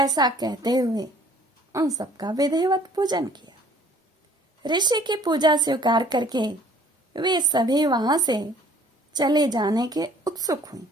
कहते हुए उन सबका विधिवत पूजन किया। ऋषि की पूजा स्वीकार करके वे सभी वहां से चले जाने के उत्सुक हुई।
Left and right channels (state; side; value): normal; both; correlation 0.56